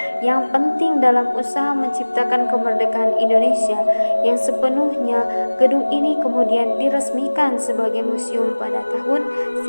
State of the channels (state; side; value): inverted; both; correlation -1.00